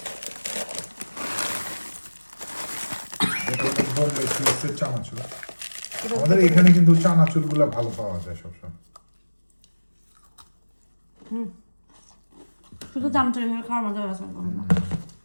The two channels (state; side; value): inverted; both; correlation -1.00